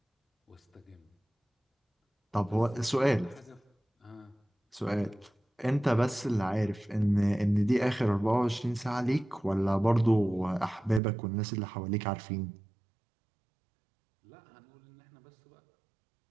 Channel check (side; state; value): left; drops out; at 11.0 s